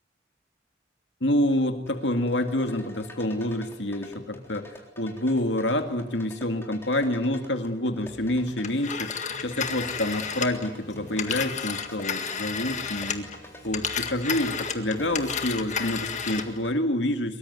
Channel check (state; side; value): normal; both; correlation 0.34